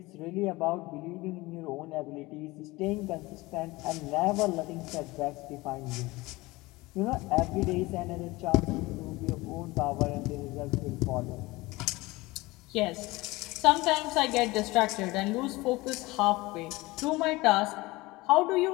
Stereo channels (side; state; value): right; quieter; 21.2 dB